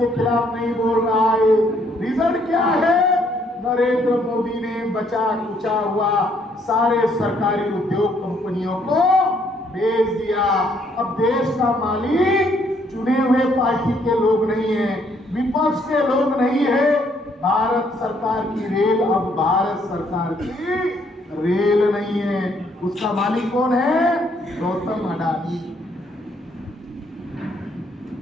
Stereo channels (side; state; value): both; normal; correlation 0.68